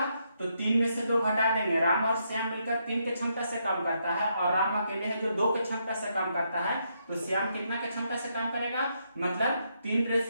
तो 3 में से 2 घटा देंगे। राम और श्याम मिलकर 3 के क्षमता से काम करता है और राम अकेले है जो 2 के क्षमता से काम करता है तो श्याम कितना के क्षमता से काम करेगा मतलब 3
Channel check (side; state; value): both; inverted; correlation -0.78